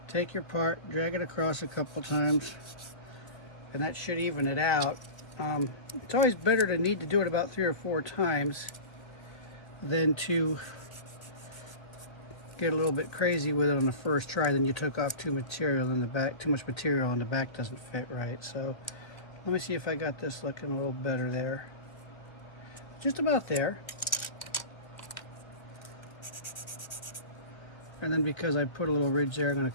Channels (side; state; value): right; late; 1.4 ms